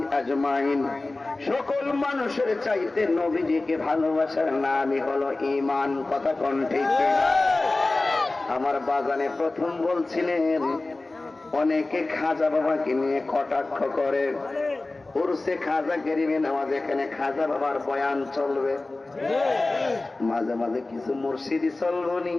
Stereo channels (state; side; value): quieter; right; 3.1 dB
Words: আজমাইন সকল মানুষের চাইতে নবীজিকে ভালোবাসার নামই হলো ঈমান। কথা কোন ঠিক না? আমার বাজানে প্রথম বলছিলেন অনেকে খাজা বাবাকে নিয়ে কটাক্ষ করে, উরসে খাজা গরিবে নামাজ এখানে খাজা বাবার বয়ান চলবে, মাঝে মাঝে কিছু মুর্শিদি চলবনি,